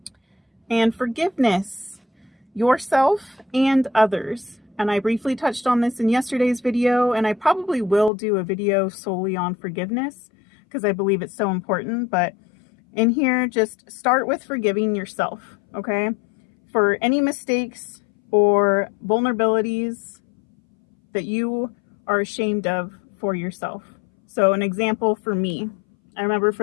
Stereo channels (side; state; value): right; drops out; at 8.1 s